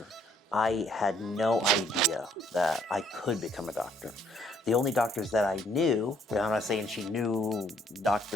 I had no idea that I could become a doctor. The only doctors that I knew, and I'm not saying she knew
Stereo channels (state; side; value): normal; both; correlation 0.66